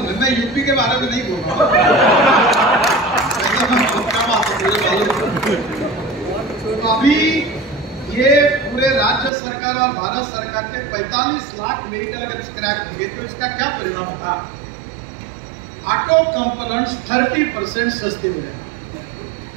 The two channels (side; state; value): left; drops out; at 9.3 s